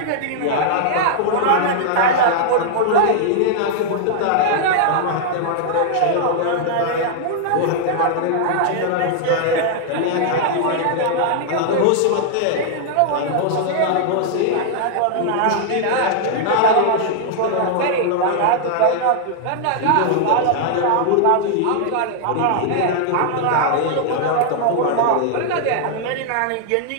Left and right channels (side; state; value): both; different; correlation -0.01